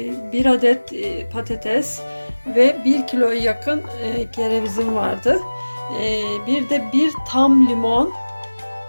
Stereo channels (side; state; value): both; inverted; correlation -1.00